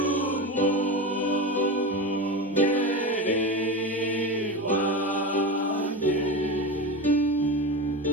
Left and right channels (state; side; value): normal; both; correlation 0.23